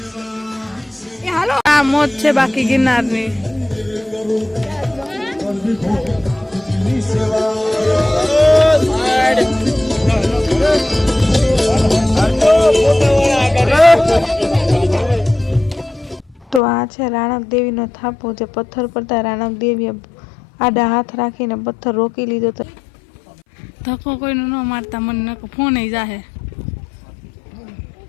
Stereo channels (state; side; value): drops out; right; at 16.6 s